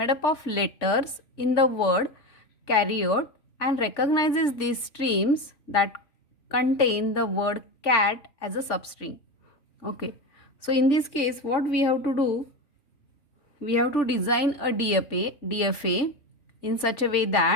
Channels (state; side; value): late; right; 3.5 ms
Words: up of letters in the word carrot and recognizes these strings that contain the word cat as a substring. Okay, so in this case what we have to do, we have to design a DFA in such a way